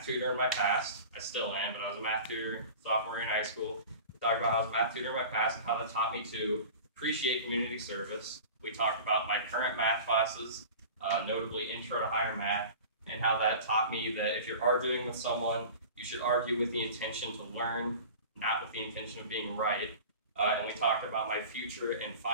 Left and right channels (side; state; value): both; inverted; correlation -0.37